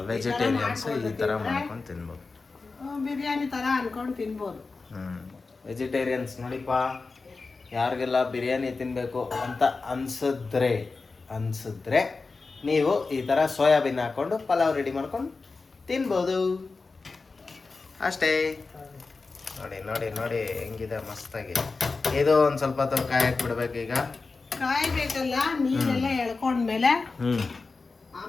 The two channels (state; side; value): quieter; right; 4.1 dB